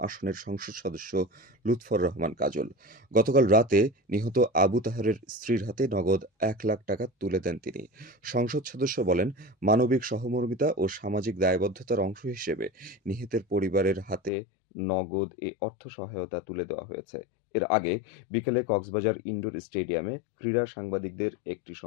সংসদ সদস্য লুৎফর রহমান কাজল। গতকাল রাতে নিহত আবু তাহেরের স্ত্রীর হাতে নগদ ১ লাখ টাকা তুলে দেন তিনি। সংসদ সদস্য বলেন, মানবিক সহমর্মিতা ও সামাজিক দায়বদ্ধতার অংশ হিসেবে নিহতের পরিবারের হাতে নগদ এ অর্থ সহায়তা তুলে দেওয়া হয়েছে। এর আগে বিকেলে কক্সবাজার ইনডোর স্টেডিয়ামে ক্রীড়া সাংবাদিকদের একটি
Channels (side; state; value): right; drops out; at 14.3 s